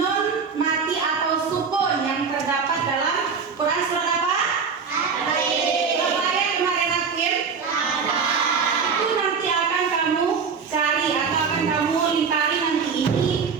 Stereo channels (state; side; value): quieter; left; 5.7 dB